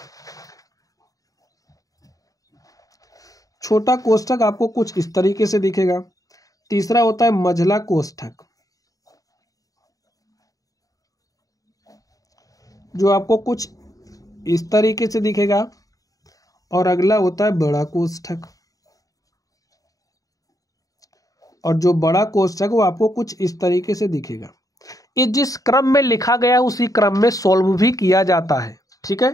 छोटा कोष्ठक आपको कुछ इस तरीके से दिखेगा। तीसरा होता है मझला कोष्ठक, जो आपको कुछ इस तरीके से दिखेगा। और अगला होता है बड़ा कोष्ठक, और जो बड़ा कोष्ठक वो आपको कुछ इस तरीके से दिखेगा। ये जिस क्रम में लिखा गया उसी क्रम में सॉल्व भी किया जाता है, ठीक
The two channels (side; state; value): right; late; 0.17 ms